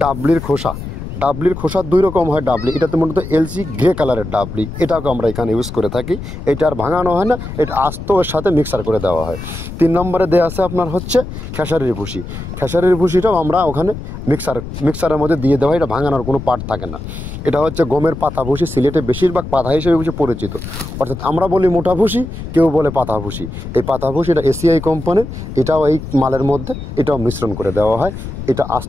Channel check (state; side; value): noise; left; rumble, 9 dB below the sound